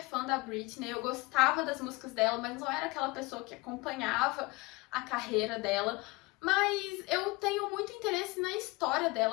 fã da Britney, eu gostava das músicas dela, mas não era aquela pessoa que acompanhava a carreira dela. Mas eu tenho muito interesse na história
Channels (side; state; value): right; quieter; 23.8 dB